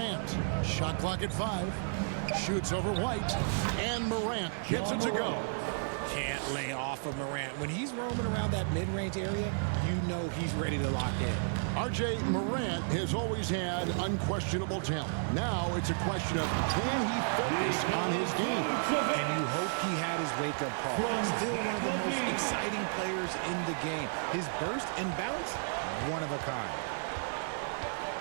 Shot clock at 5. Shoots over White. And Morant gets it to go. Can't lay off of Morant. When he's roaming around that mid-range area, you know he's ready to lock in. RJ, Morant has always had unquestionable talent. Now it's a question of can he focus on his game? And you hope he had his wake-up call. Still one of the most exciting players in the game. His burst and bounce, one of a kind.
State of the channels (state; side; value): silent; left; digital silence